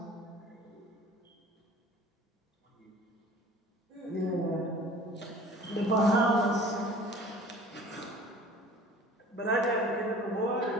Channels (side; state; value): both; normal; correlation 0.46